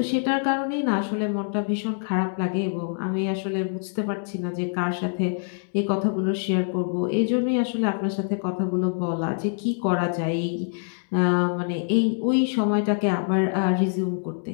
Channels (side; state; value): right; silent; digital silence